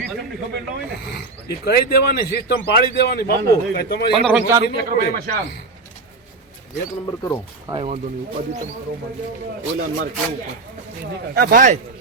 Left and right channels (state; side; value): quieter; left; 3.6 dB